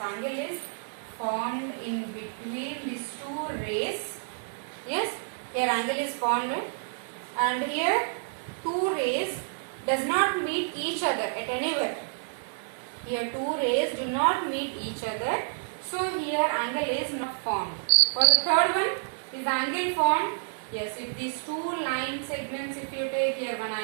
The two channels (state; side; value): silent; left; digital silence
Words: is formed in between these two rays. Yes, here angle is formed, and here two rays does not meet each other at anywhere. Here two rays do not meet each other, so here angle is not formed. For the third one, is angle formed? Yes, if these two line segments, if you take, here one